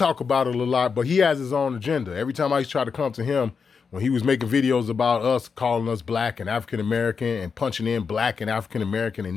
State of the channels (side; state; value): right; quieter; 5.7 dB